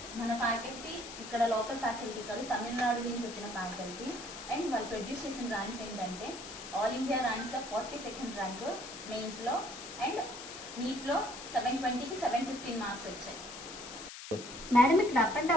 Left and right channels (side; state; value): left; noise; hiss, 11 dB below the sound